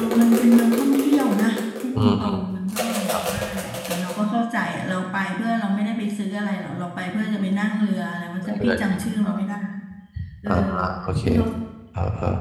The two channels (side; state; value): both; identical; correlation 1.00